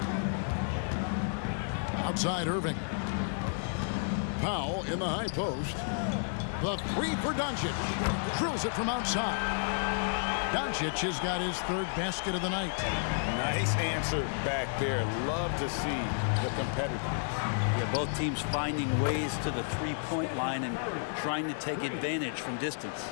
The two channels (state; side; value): silent; right; digital silence